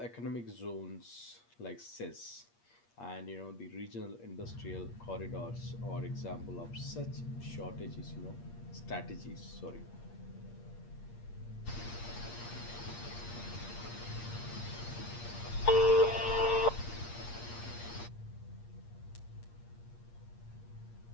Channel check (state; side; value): late; right; 8.5 ms